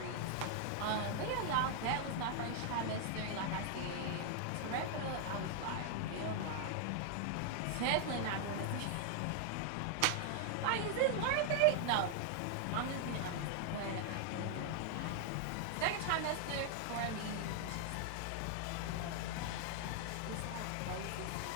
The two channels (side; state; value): both; different; correlation 0.00